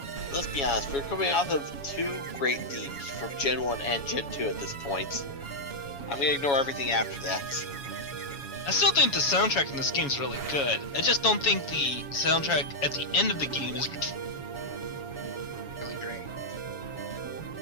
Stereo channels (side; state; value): right; late; 7.2 ms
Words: Let's be honest, we're coming off of two great themes from Gen 1 and Gen 2 at this point. I'm gonna ignore everything after that. I still think the soundtrack in this game is really good. I just don't think the soundtrack at the end of the game is really great.